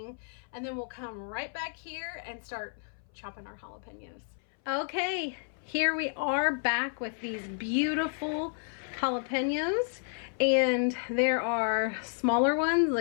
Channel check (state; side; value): silent; right; 57 dB below the other